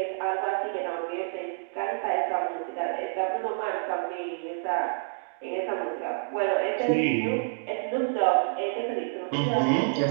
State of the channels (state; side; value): silent; left; digital silence